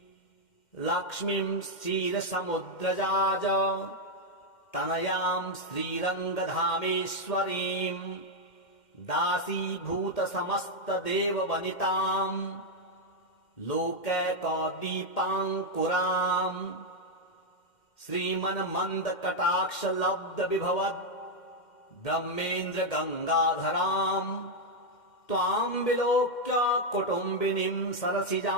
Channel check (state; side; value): late; right; 2.1 ms